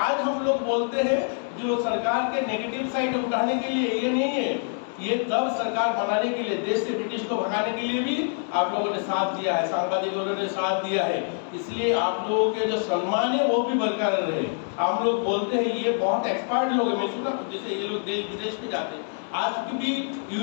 आज हम लोग बोलते हैं जो सरकार के नेगेटिव साइड उठाने के लिए, ये नहीं है। ये तब सरकार बनाने के लिए, देश से ब्रिटिश को भगाने के लिए भी आप लोगों ने साथ दिया है, सांबादिकों ने साथ दिया है, इसलिए आप लोगों के जो सम्मान है वो भी बरकरार रहे। हम लोग बोलते हैं ये बहुत एक्सपर्ट लोग हैं, मैं सुना जैसे ये लोग देश विदेश में जाते हैं, आज भी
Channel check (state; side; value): silent; right; 61 dB below the other